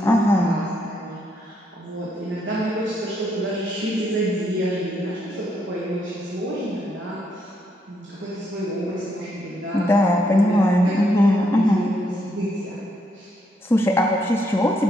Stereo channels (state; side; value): normal; both; correlation 0.76